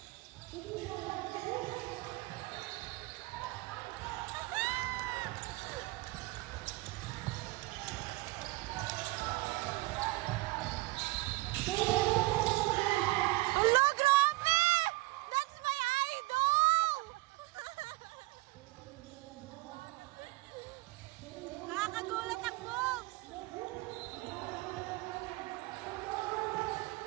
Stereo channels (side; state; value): left; quieter; 20.7 dB